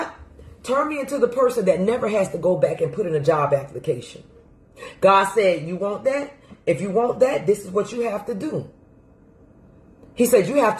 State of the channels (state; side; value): identical; both; correlation 1.00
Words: turn me into the person that never has to go back and put in a job application. God said, you want that? If you want that, this is what you have to do. He said, you have